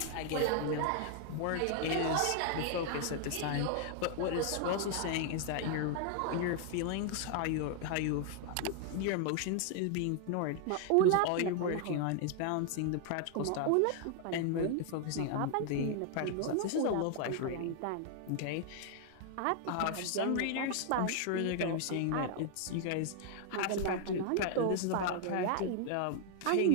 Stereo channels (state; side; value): different; both; correlation 0.00